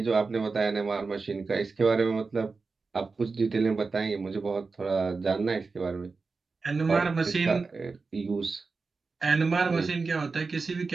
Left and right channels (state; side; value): quieter; left; 4.3 dB